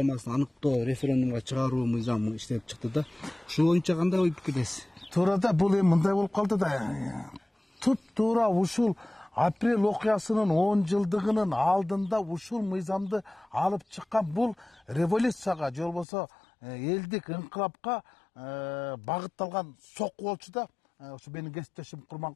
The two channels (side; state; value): right; drops out; at 16.1 s